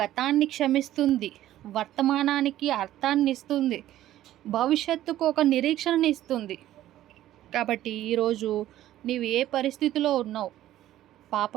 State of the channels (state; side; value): quieter; left; 13.5 dB